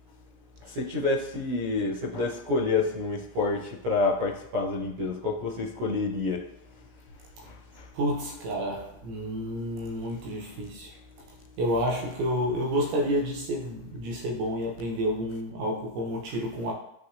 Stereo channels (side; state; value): left; late; 17 ms